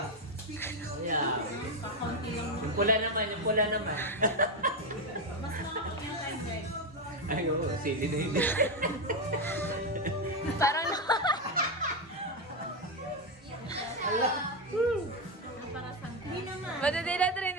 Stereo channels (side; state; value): both; normal; correlation 0.08